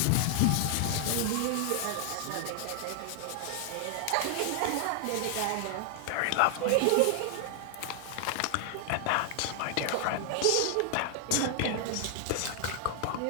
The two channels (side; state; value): both; different; correlation 0.00